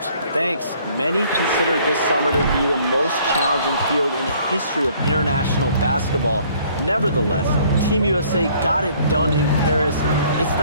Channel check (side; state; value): both; inverted; correlation -0.59